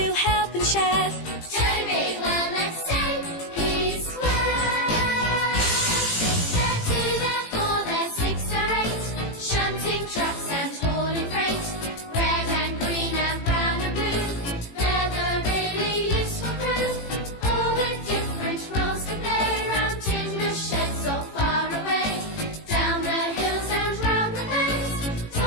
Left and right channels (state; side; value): late; right; 18 ms